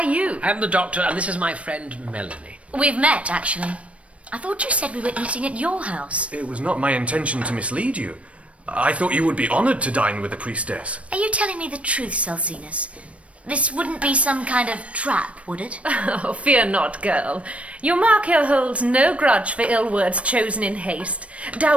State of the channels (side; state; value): left; late; 0.063 ms